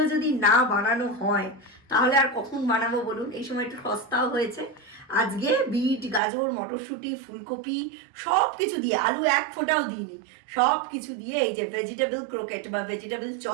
যদি না বানানো হয় তাহলে আর কখন বানাবো বলুন? এই সময় একটু সস্তাও হয়েছে। আজকে বিট, গাজর, মটরশুঁটি, ফুলকপি সব কিছু দিয়ে, আলু এক ফোঁটাও দিইনি, সব কিছু দিয়ে এই যে ভেজিটেবল ক্রোকেট বা ভেজিটেবল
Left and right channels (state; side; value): drops out; left; at 6.2 s